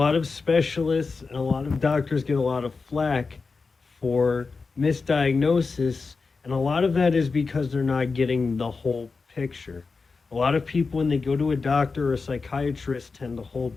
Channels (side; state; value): right; quieter; 4.4 dB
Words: of specialists and a lot of doctors get a lot of flack for misdiagnosis, and a lot of that is because they're not getting the whole picture. A lot of people, when they go to a doctor or a psychiatrist, tend to hold